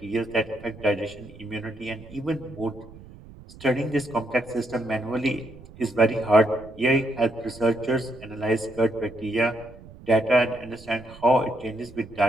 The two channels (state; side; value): noise; right; rumble, 19 dB below the sound